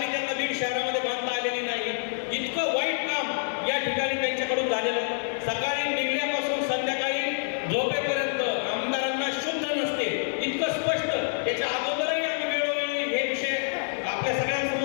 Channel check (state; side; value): silent; right; 60 dB below the other